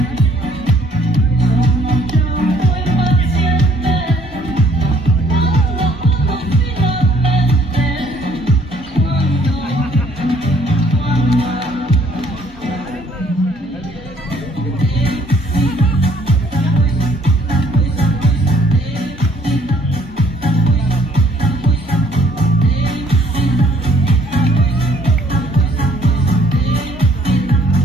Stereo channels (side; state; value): both; normal; correlation 0.62